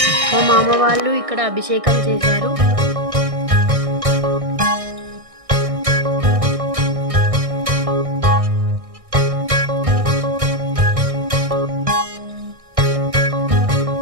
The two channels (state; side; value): late; left; 1.6 ms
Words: మా మామ వాళ్ళు ఇక్కడ అభిషేకం చేశారు.